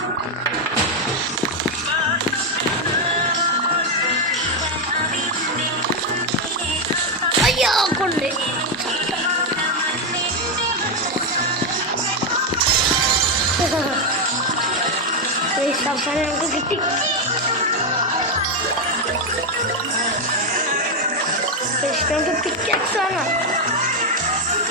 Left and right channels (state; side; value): normal; both; correlation 0.05